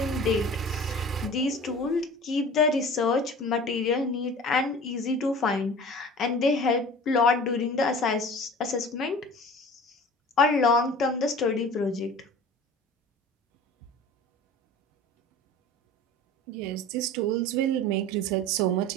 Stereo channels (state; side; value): normal; both; correlation 0.41